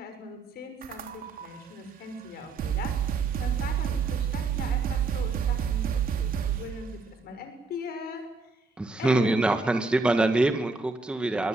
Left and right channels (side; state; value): left; quieter; 3.8 dB